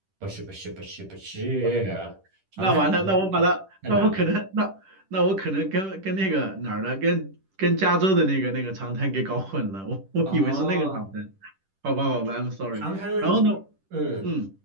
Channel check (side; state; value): left; late; 10 ms